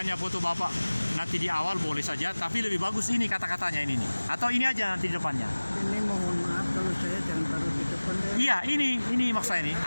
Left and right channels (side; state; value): both; inverted; correlation -1.00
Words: foto Bapak nanti di awal boleh saja, tapi lebih bagus ini kata-katanya ini nih. Atau ini aja nanti di depannya. Ini mohon maaf kalau saya jangan taruh di depan deh. Iya, ini maksud saya ini